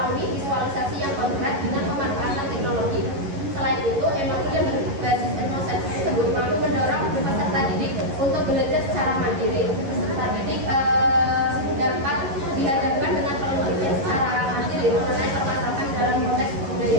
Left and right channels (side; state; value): left; late; 11 ms